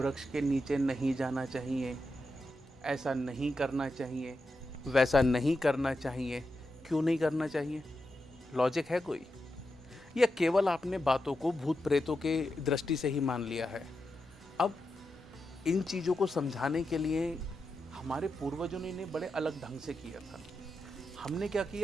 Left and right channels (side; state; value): both; normal; correlation 0.88